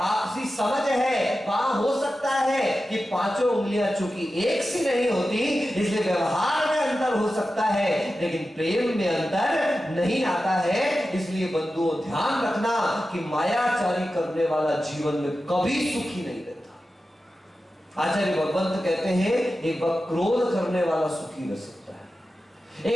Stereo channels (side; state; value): both; normal; correlation 0.93